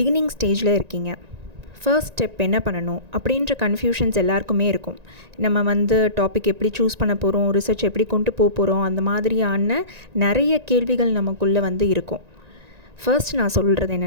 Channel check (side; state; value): left; late; 1.9 ms